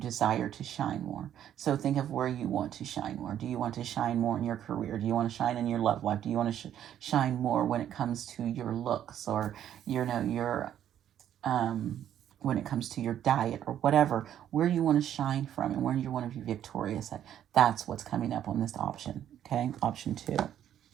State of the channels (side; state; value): left; quieter; 10.6 dB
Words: to shine more. So think of where you want to shine more. Do you want to shine more in your career? Do you want to shine in your love life? Do you want to shine more when it comes to your looks, or your when it comes to your diet, or whatever, where you want to shine from and where you want to be victorious at? That's what's coming up on this option. Okay, option 2.